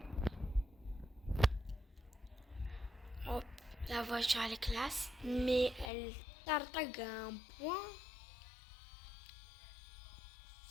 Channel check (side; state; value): right; drops out; at 5.9 s